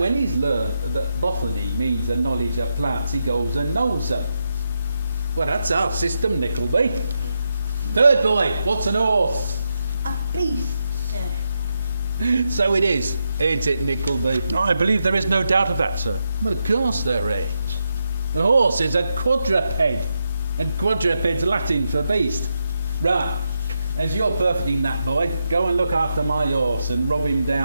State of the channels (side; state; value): both; inverted; correlation -0.85